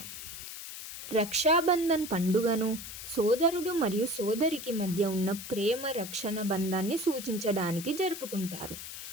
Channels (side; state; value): left; noise; hiss, 10 dB below the sound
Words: రక్షాబంధన్ పండుగను సోదరుడు మరియు సోదరికి మధ్య ఉన్న ప్రేమ రక్షణ బంధాన్ని సూచించడానికి జరుపుకుంటారు.